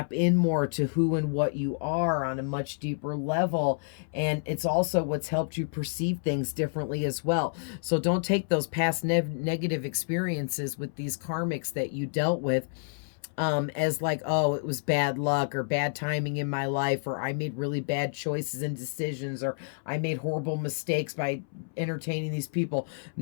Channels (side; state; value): right; silent; 59 dB below the other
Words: in more to who and what you are on a much deeper level. And it's also what's helped you perceive things differently as well. So don't take those past negative experiences with these karmics that you dealt with as like, oh, it was bad luck or bad timing in my life, or I made really bad choices and decisions, or I made horrible mistakes by entertaining these people.